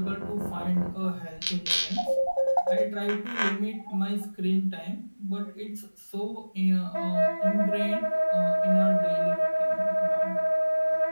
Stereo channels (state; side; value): inverted; both; correlation -1.00